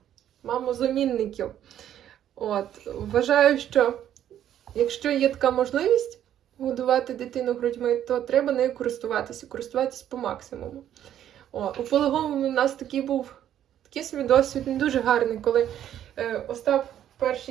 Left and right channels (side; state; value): left; quieter; 10.9 dB